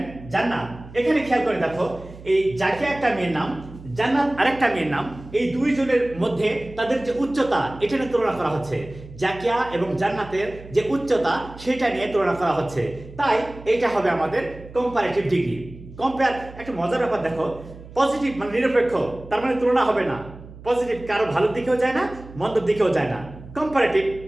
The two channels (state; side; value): noise; right; hum, 17 dB below the sound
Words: জান্নাত। এখানে খেয়াল করে দেখো, এই জাকিয়া একটা মেয়ের নাম, জান্নাত আরেকটা মেয়ের নাম, এই দুইজনের মধ্যে তাদের যে উচ্চতা এটা নিয়ে তুলনা করা হচ্ছে। জাকিয়া এবং জান্নাতের যে উচ্চতা সেটা নিয়ে তুলনা করা হচ্ছে, তাই এটা হবে আমাদের কম্পারেটিভ ডিগ্রি। কম্পেয়ার একটা মজার ব্যাপার দেখো, পজিটিভ মানে নিরপেক্ষ, তার মানে তুলনা হবে না। পজিটিভ কারো ভালোর দিকেও যায় না, মন্দর দিকেও যায় না। Comparative,